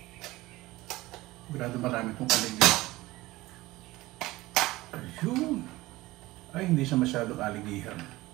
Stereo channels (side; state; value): left; quieter; 18.9 dB